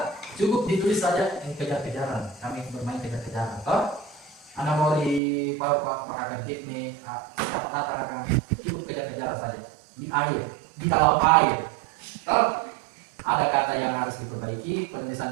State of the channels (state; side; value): drops out; left; at 5.2 s